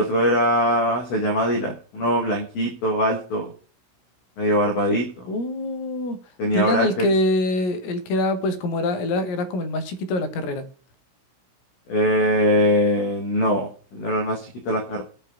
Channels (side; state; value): right; late; 17 ms